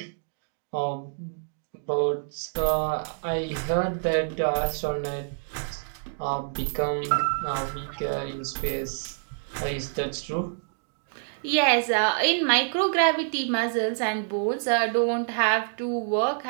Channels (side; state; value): left; silent; digital silence